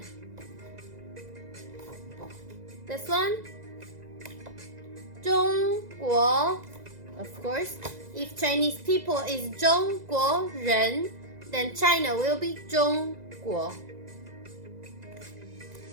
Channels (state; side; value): late; left; 2.0 ms